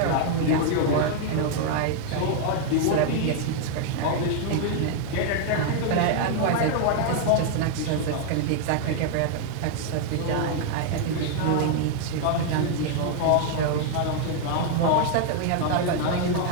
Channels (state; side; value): different; both; correlation 0.00